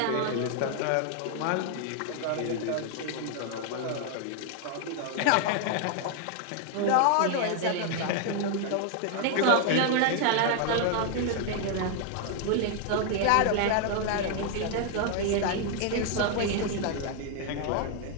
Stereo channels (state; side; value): different; both; correlation 0.00